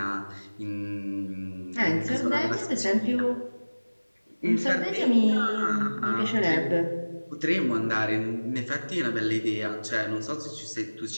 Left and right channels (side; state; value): both; inverted; correlation -1.00